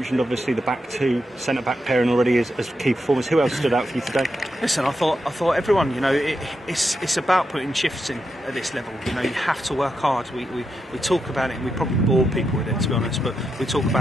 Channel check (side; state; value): both; normal; correlation 0.85